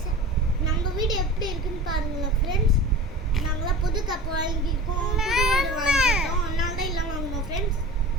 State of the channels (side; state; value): both; normal; correlation 0.36